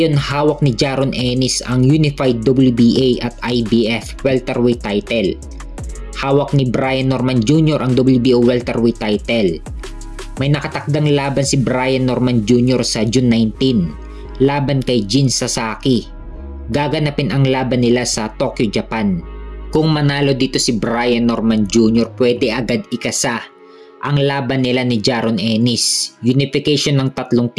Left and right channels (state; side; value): identical; both; correlation 1.00